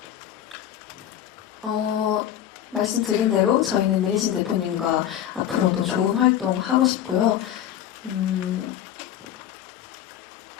말씀드린 대로 저희는 민희진 대표님과 앞으로도 좋은 활동 하고 싶고요.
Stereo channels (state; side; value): quieter; right; 10.9 dB